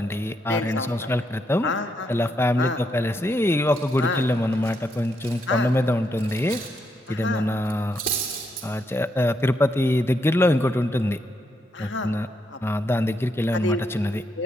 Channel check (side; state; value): both; normal; correlation 0.78